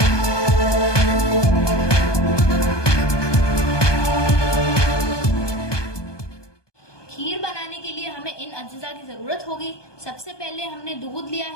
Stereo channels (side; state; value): right; late; 1.2 ms